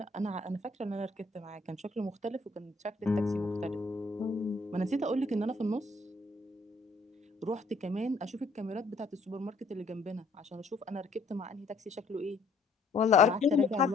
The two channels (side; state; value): right; quieter; 3.4 dB